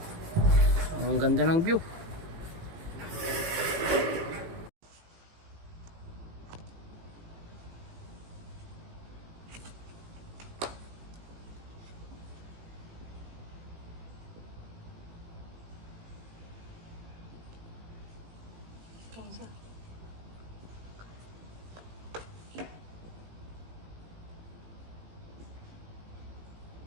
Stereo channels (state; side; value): late; left; 18 ms